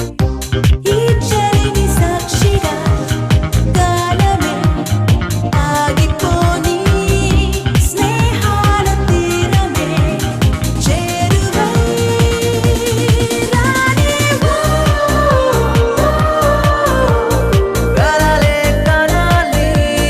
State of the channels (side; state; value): both; identical; correlation 1.00